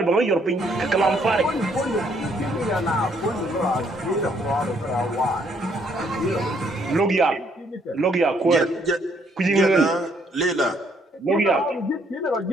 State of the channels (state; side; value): normal; both; correlation 0.68